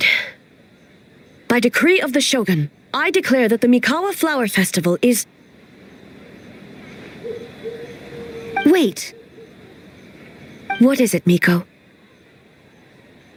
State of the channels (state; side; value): identical; both; correlation 1.00